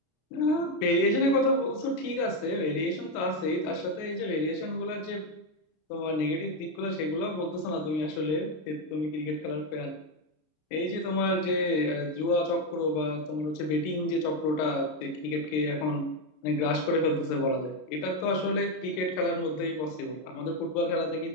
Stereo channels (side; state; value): right; late; 33 ms